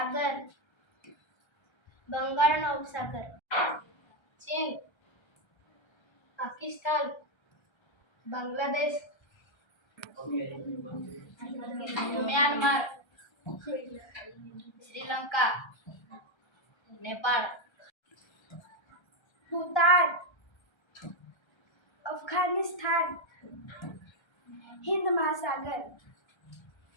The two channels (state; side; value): late; right; 1.3 ms